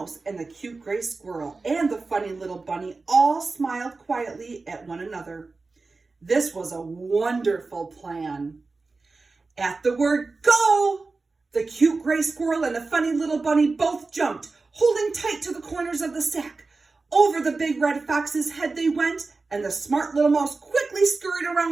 and the cute gray squirrel and the funny little bunny all smiled quietly at one another. This was a wonderful plan. At the word "go," the cute gray squirrel and the funny little bunny both jumped, holding tight to the corners of the sack. Over the big red fox's head they went, and the smart little mouse quickly scurried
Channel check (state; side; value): quieter; left; 3.9 dB